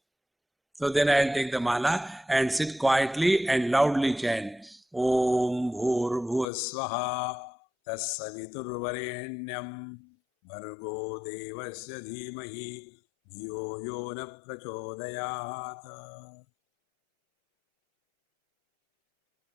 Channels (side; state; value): right; drops out; at 6.5 s